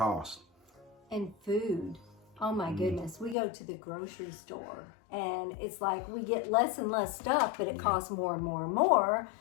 And food. Oh my goodness. We go to the grocery store and it's like we get less and less stuff, but it costs more and more and more.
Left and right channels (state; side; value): drops out; right; at 3.4 s